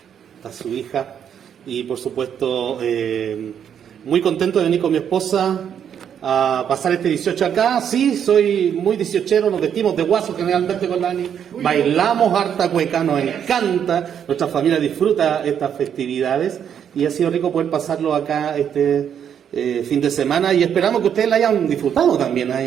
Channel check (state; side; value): quieter; left; 8.6 dB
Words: a su hija, y por supuesto muy contento de venir con mi esposa a pasar este 18 acá. Sí, soy muy 18ero, nos vestimos de guaso generalmente con Dani, bailamos harta cueca, nos encanta, nuestra familia disfruta estas festividades y ha sido rico poder pasarlo acá este fin de semana, y esperamos que ustedes la hayan disfrutado también,